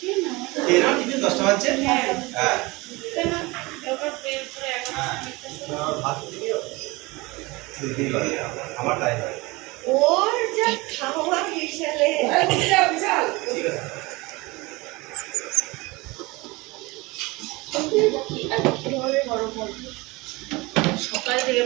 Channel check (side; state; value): left; quieter; 23.4 dB